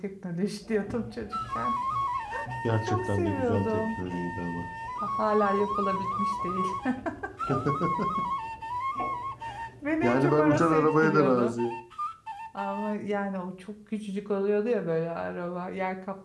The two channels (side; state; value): both; identical; correlation 1.00